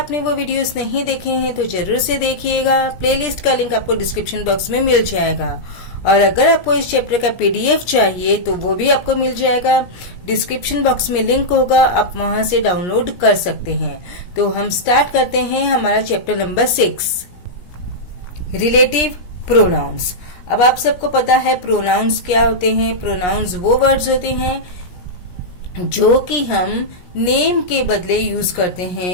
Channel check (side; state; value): right; late; 17 ms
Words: वो वीडियोस नहीं देखे हैं तो जरूर से देखिएगा। प्लेलिस्ट का लिंक आपको डिस्क्रिप्शन बॉक्स में मिल जाएगा। और अगर आपको इस चैप्टर का पीडीएफ चाहिए तो वो भी आपको मिल जाएगा। डिस्क्रिप्शन बॉक्स में लिंक होगा, आप वहां से डाउनलोड कर सकते हैं। तो हम स्टार्ट करते हैं हमारा चैप्टर नंबर 6, रिलेटिव प्रोनाउंस। अब आप सबको पता है प्रोनाउंस क्या होते हैं। प्रोनाउंस वो वर्ड्स होते हैं जो कि हम नेम के बदले यूज करते